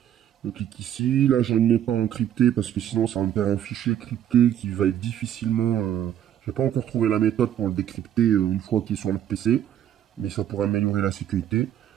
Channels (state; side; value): quieter; left; 10.6 dB